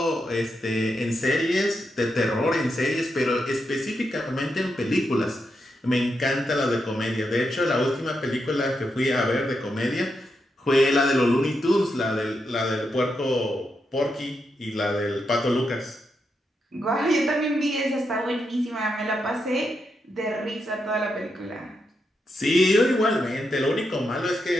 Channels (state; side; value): normal; both; correlation 0.84